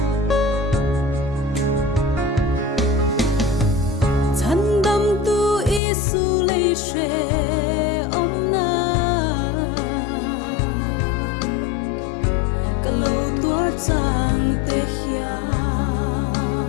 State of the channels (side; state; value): right; drops out; at 5.8 s